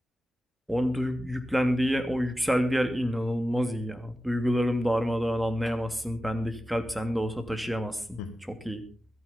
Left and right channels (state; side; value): normal; both; correlation 0.93